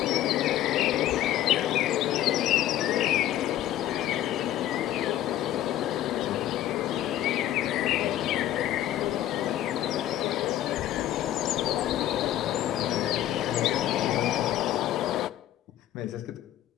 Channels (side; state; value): right; quieter; 12.8 dB